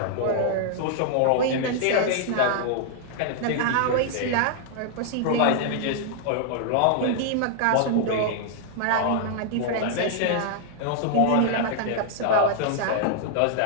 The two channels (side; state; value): both; different; correlation -0.01